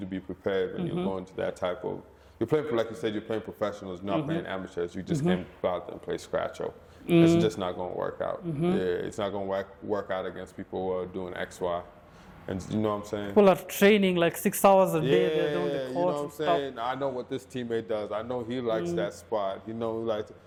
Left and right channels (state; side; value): identical; both; correlation 1.00